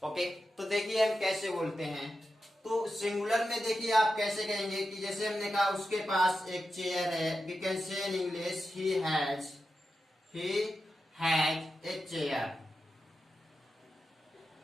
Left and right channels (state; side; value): normal; both; correlation 0.90